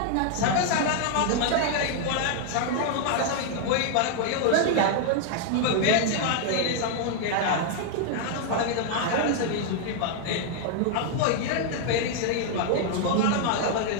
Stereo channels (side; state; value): both; different; correlation 0.00